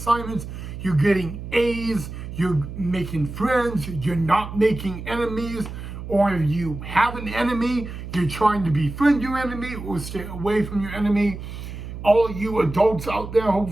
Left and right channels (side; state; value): right; noise; hum, 9 dB below the sound